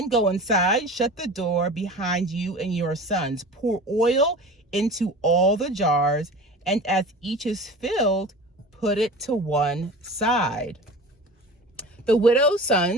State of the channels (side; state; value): both; normal; correlation 0.36